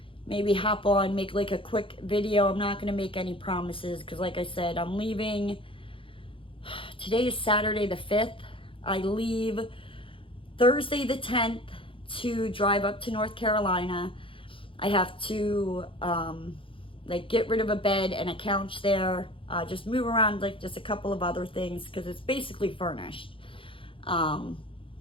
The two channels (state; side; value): late; right; 0.25 ms